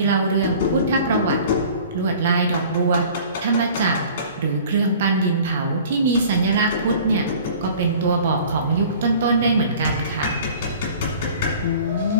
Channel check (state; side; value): inverted; both; correlation -0.47